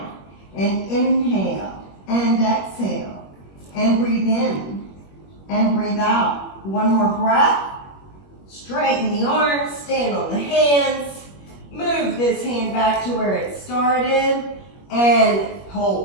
And inhale and exhale and breathe in and breathe out. One more breath. Straighten the arms, stand on the hands. Move this hand back to where it started and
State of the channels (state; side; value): late; right; 21 ms